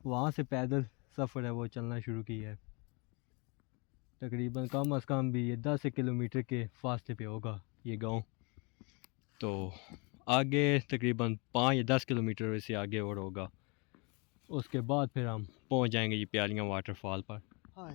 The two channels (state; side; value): quieter; right; 30.6 dB